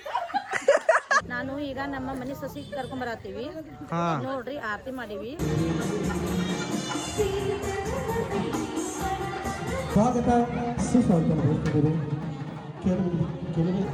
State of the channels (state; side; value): identical; both; correlation 1.00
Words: ನಾನು ಈಗ ನಮ್ಮ ಮನೆ ಸೊಸಿ ಕರ್ಕೊಂಬರತ್ತೀವಿ ನೋಡ್ರಿ, ಆರತಿ ಮಾಡೀವಿ. ಸ್ವಾಗತ ಸುಸ್ವಾಗತ ಮಾಡ್ತಿದ್ದೀರಿ.